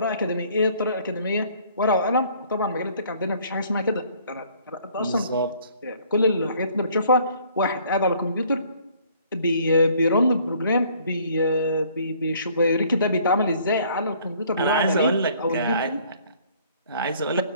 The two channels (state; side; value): inverted; both; correlation -0.59